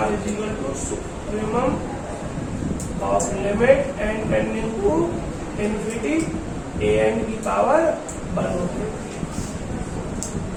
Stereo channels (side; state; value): both; identical; correlation 1.00